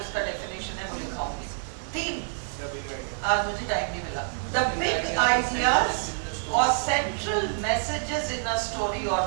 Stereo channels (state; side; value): silent; left; digital silence